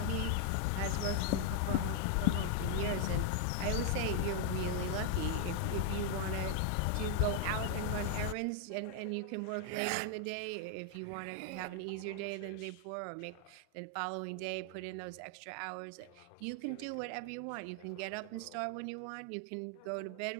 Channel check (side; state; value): both; different; correlation 0.00